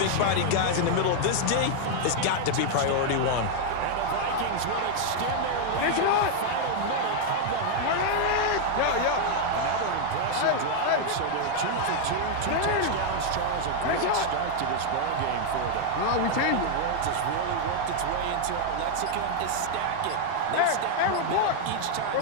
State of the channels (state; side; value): different; both; correlation 0.00